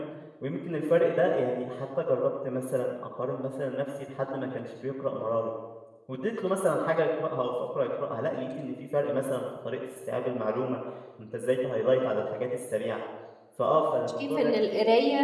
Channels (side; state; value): both; identical; correlation 1.00